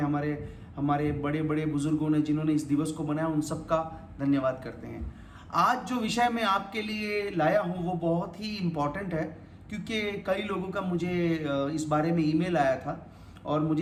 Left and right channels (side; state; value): both; identical; correlation 1.00